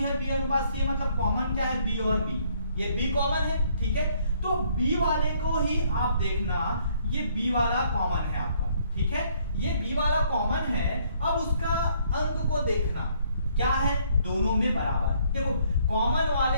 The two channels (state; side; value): inverted; both; correlation -0.65